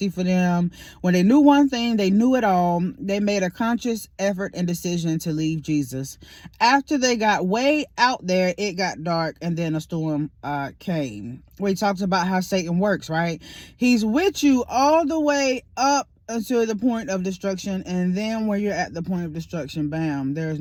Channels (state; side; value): identical; both; correlation 1.00